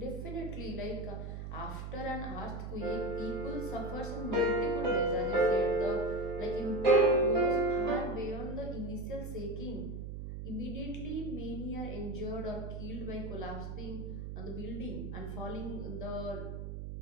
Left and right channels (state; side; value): noise; right; hum, 6 dB below the sound